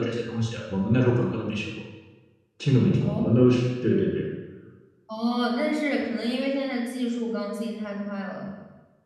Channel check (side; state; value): both; identical; correlation 1.00